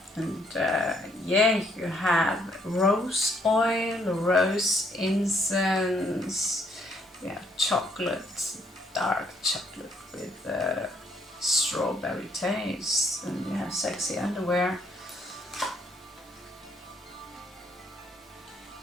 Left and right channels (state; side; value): normal; both; correlation 0.69